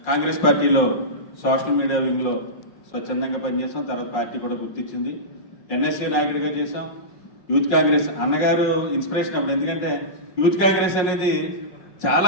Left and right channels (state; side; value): late; right; 5.5 ms